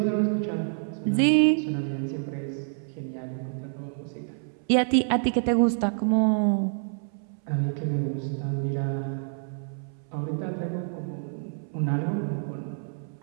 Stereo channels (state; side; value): silent; left; 60 dB below the other